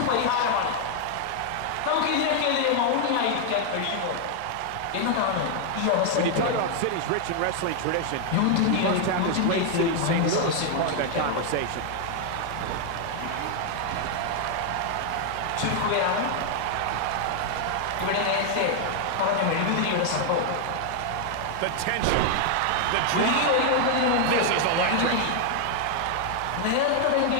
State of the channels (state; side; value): different; both; correlation 0.00